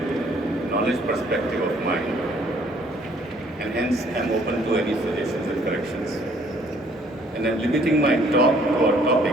knowledge perspective of mine, and hence I am open to any suggestions and corrections. And I am limiting my talk to our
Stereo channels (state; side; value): normal; both; correlation 0.61